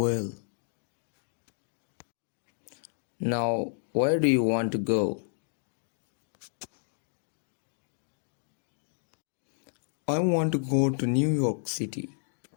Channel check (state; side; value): silent; right; digital silence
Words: Now, where do you want to go? I want to go to New York City.